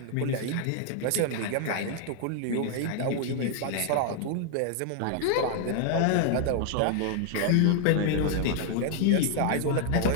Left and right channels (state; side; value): different; both; correlation 0.00